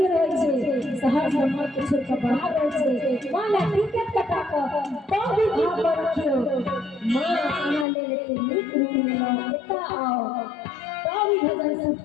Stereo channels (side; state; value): right; drops out; at 7.9 s